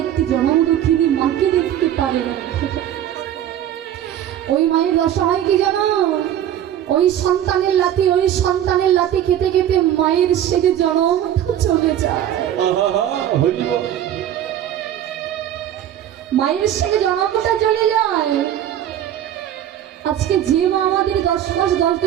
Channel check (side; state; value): left; quieter; 11.0 dB